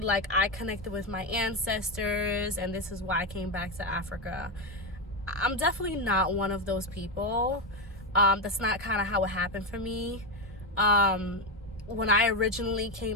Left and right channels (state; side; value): normal; both; correlation 0.10